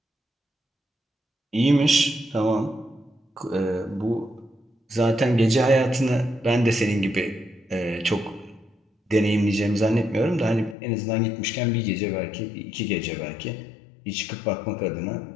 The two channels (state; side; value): drops out; right; at 10.8 s